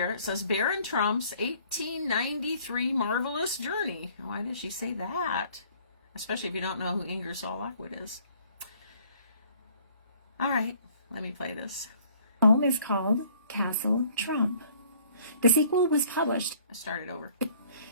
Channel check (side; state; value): both; inverted; correlation -0.58